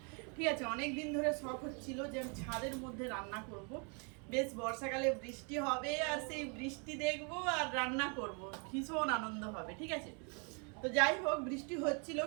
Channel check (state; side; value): quieter; left; 36.0 dB